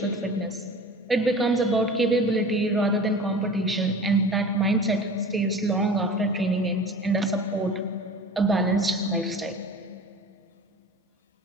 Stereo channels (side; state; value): both; normal; correlation 0.39